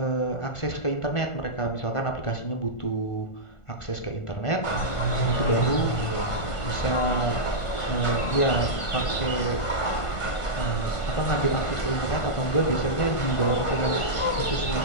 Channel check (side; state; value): right; late; 1.5 ms